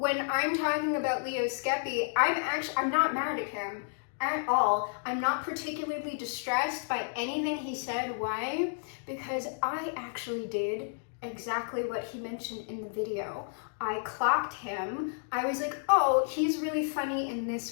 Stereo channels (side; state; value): right; silent; digital silence